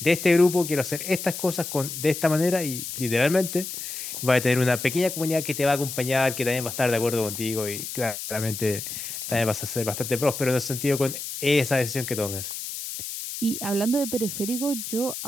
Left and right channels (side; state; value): left; noise; hiss, 7 dB below the sound